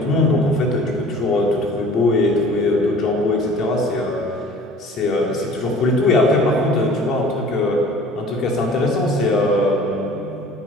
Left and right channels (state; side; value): normal; both; correlation 0.47